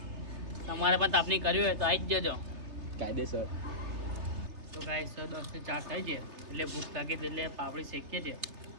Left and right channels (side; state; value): left; late; 3.3 ms